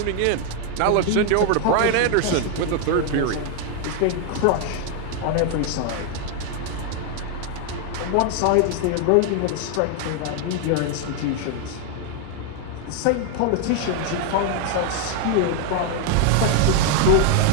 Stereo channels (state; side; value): different; both; correlation 0.00